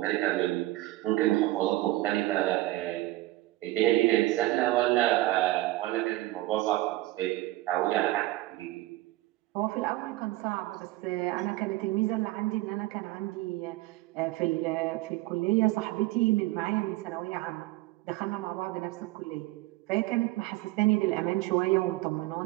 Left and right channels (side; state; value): left; quieter; 18.1 dB